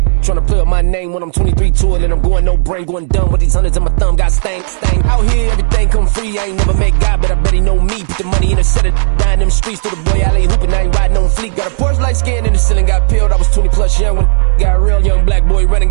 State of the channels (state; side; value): silent; left; digital silence